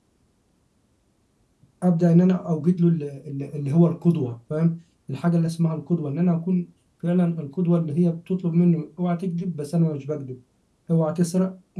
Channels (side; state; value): both; identical; correlation 1.00